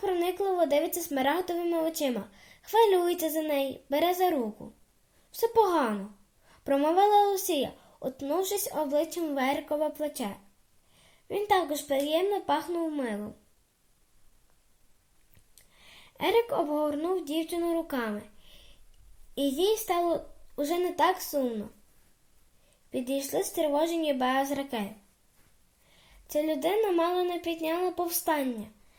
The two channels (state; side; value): identical; both; correlation 1.00